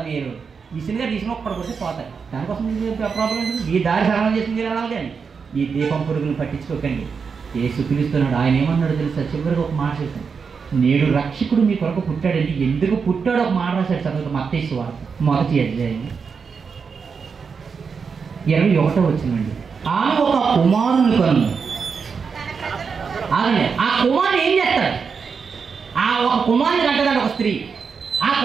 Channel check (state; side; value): quieter; left; 5.7 dB